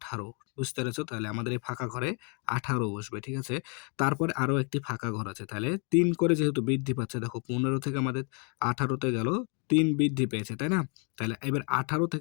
বুঝতে পেরেছো? তাহলে আমাদের এই ফাঁকা ঘরে ১৮ বসবে, ঠিক আছে? তারপরে আরো একটি ফাঁকা ঘর আছে। তাহলে ৩ করে যেহেতু বৃদ্ধি পাচ্ছে, দেখো ১৫ থেকে আমাদের ১৮ তে গেল, ৩ বৃদ্ধি পেয়েছে, তাই না? তাহলে এবার ১৮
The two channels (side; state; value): right; quieter; 36.3 dB